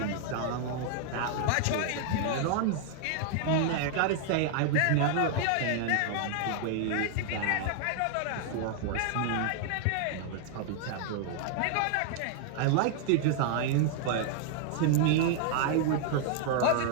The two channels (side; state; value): both; different; correlation 0.00